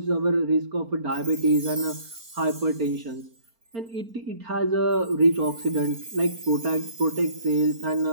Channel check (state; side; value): late; left; 4.4 ms